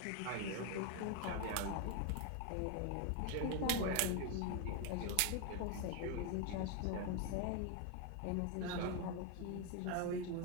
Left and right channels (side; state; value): both; different; correlation 0.01